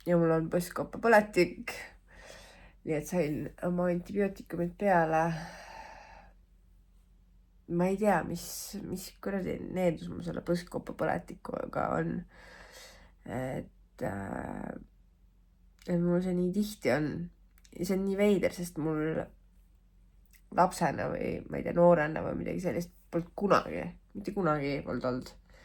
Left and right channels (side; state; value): both; identical; correlation 1.00